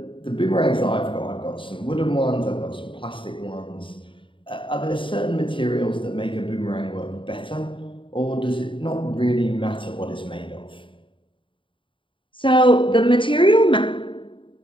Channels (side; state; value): right; late; 0.25 ms